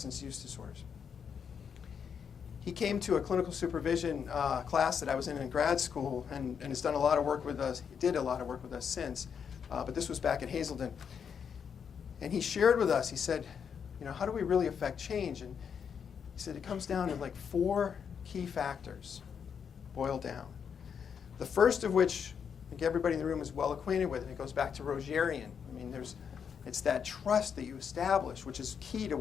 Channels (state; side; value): quieter; right; 7.1 dB